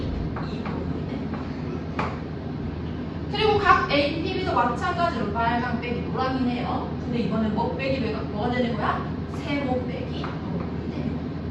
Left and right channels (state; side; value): identical; both; correlation 1.00